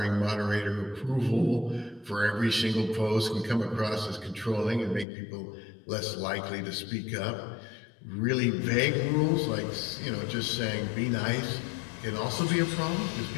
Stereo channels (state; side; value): drops out; right; at 5.1 s